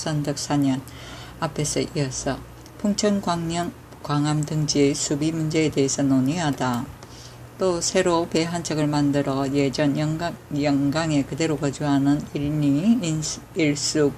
4년 앞에서 이어서 풍천 광암 등지의 수비 문제에 대해서 논의하다. 또 새로 배 한 척을 만들어 예전 영강에 그대로 거주하는 일리 일수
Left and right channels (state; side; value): identical; both; correlation 1.00